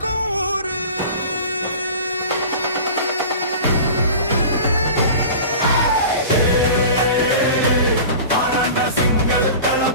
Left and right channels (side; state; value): both; inverted; correlation -0.37